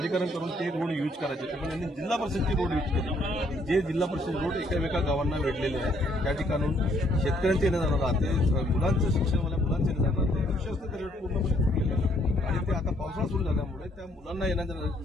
करून ते रोड यूज करायचे होते, पण यांनी जिल्हा परिषदचे रोड यूज केले। जे जिल्हा परिषद रोड एका गावांना वेढलेले आहेत, त्या ठिकाणून शेतकऱ्यांचे येणे जाणार राहते, मुलांचं शिक्षण मुलांचे येणे जाणार ते लक्ष असते ते रोड पूर्णपणे फुटलेले आहे आणि ते आता पावसाळा सुरू झाल्यामुळे त्या मुलांना येण्याचा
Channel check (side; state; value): both; normal; correlation 0.67